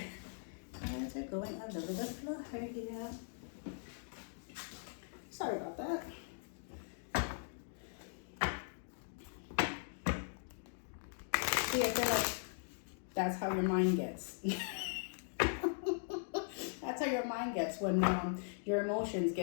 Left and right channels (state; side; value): silent; right; digital silence